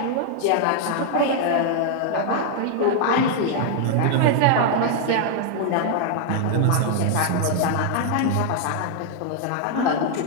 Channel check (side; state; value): both; different; correlation 0.00